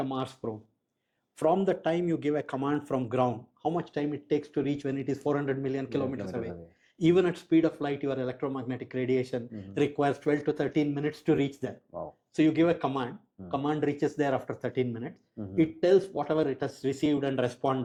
Mars probe, from the time you give a command from ground, how much time it takes to reach when it is 400 million kilometers away. Even at speed of light, your electromagnetic radiation requires 12 to 13 minutes to reach there. Wow. So you give a command, command reaches there after 13 minutes. It tells whatever it has received and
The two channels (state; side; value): identical; both; correlation 1.00